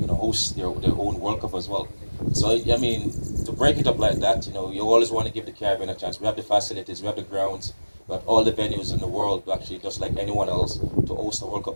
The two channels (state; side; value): inverted; both; correlation -1.00